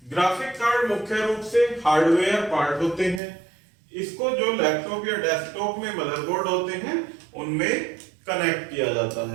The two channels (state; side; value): drops out; left; at 3.2 s